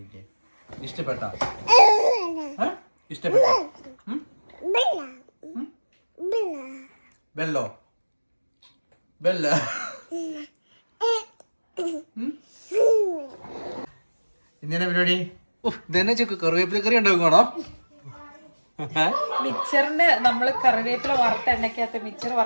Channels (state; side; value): inverted; both; correlation -1.00